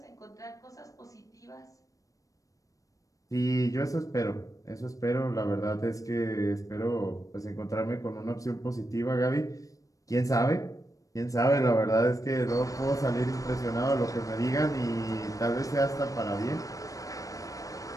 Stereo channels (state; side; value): late; right; 0.16 ms